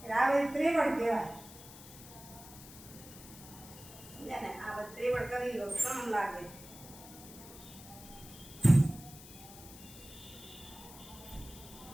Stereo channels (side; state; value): left; noise; hiss, 16 dB below the sound